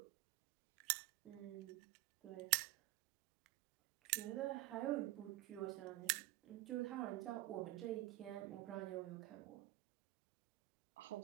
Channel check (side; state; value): left; quieter; 18.1 dB